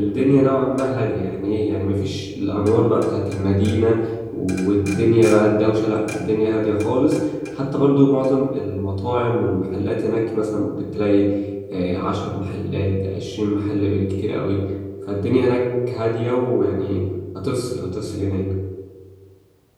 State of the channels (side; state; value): both; identical; correlation 1.00